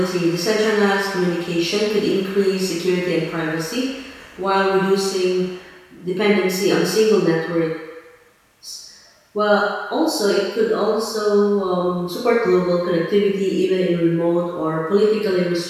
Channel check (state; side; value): identical; both; correlation 1.00